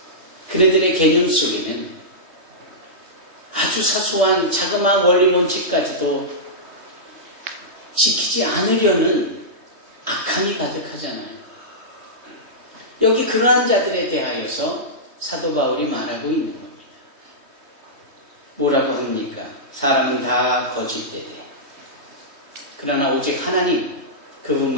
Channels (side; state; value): left; late; 3.2 ms